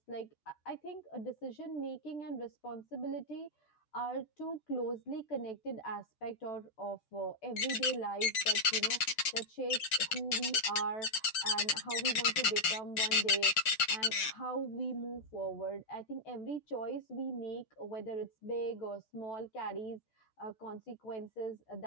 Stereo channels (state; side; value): late; right; 6.5 ms